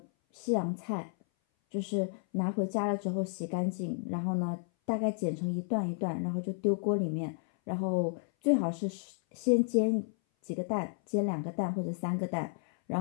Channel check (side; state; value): right; silent; 56 dB below the other